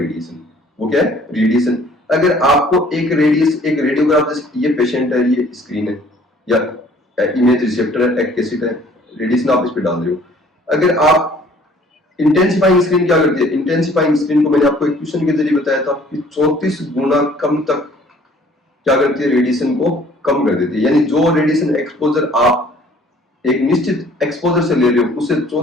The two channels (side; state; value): both; normal; correlation 0.56